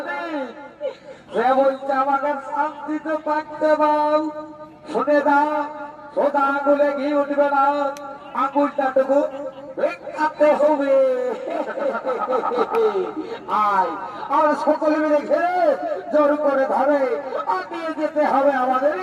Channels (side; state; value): both; identical; correlation 1.00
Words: সে বলছে আমাকে শান্তিতে থাকতে দাও শুনে দাও সোজা আঙুলে ঘি উঠবে না আঙুলটা টুকু কাটতে হবে আয় আমরা সকলে মিলে ঘিরে জোর করে ধরে আটিয়ে যেতে হবে আমাদের